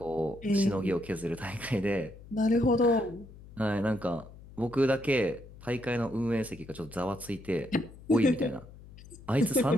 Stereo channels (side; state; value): left; noise; hum, 19 dB below the sound